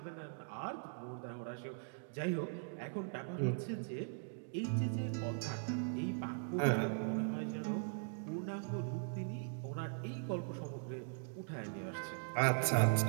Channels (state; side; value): silent; left; digital silence